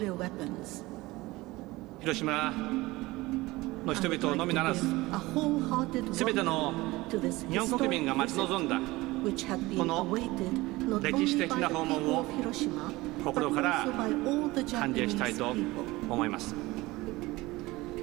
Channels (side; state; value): left; quieter; 20.3 dB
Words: 広島の人々のみならず、すべての日本国民が待ち望んだこの歴史的な訪問を心から歓迎したいと思います。